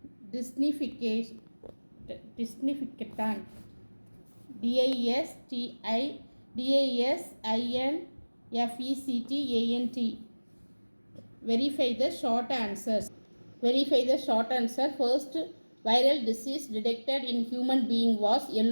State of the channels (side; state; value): both; inverted; correlation -1.00